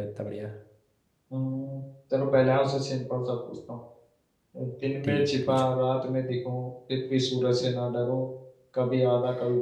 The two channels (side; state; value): both; identical; correlation 1.00